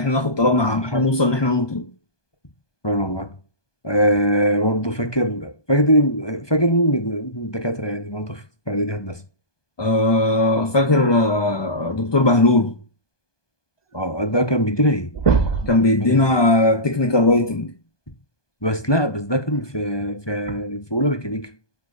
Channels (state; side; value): late; right; 1.2 ms